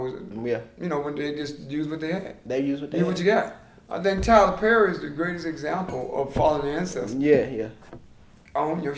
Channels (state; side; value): identical; both; correlation 1.00